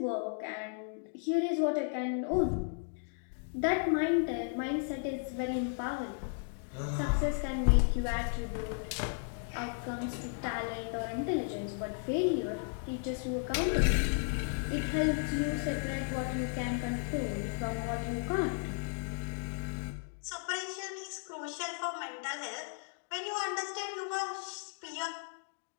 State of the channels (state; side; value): silent; right; digital silence